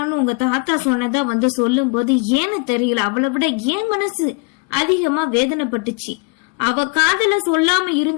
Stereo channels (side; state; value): right; quieter; 30.5 dB